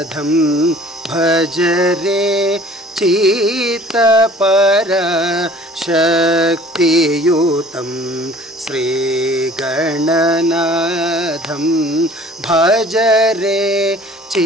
భజరే చిత్త పర శక్తియుతం శ్రీ గణనాథం భజరే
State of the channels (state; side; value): normal; both; correlation 0.49